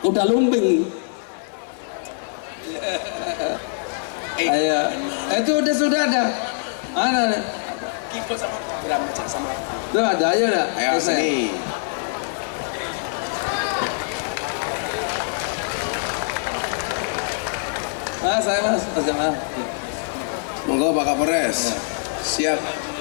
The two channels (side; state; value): right; silent; 63 dB below the other